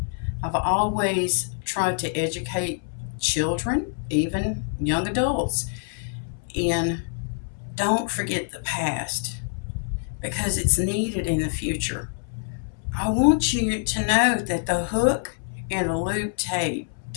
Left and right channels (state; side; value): silent; right; 60 dB below the other